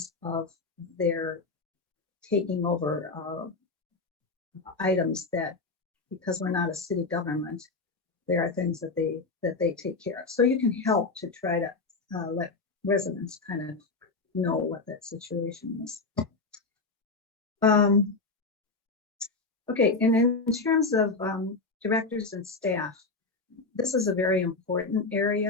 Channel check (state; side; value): quieter; right; 3.8 dB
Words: of their taking over items that, because we're not a city government, there are things that they take care of. So you can help to try to let residents kind of know what that situation is. Okay, and in terms of directors and staff, this is a very important